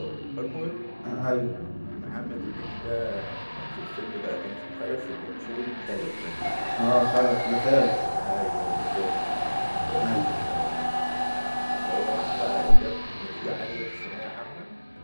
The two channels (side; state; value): both; inverted; correlation -1.00